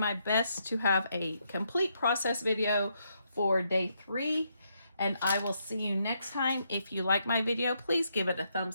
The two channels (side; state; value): both; inverted; correlation -0.77